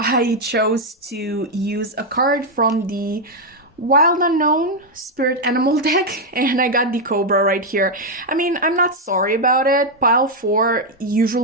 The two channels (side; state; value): both; normal; correlation 0.01